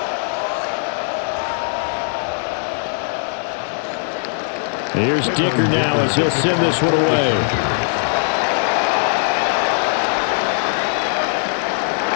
Here's Dicker now as he'll send this one away. And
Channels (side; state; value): right; silent; digital silence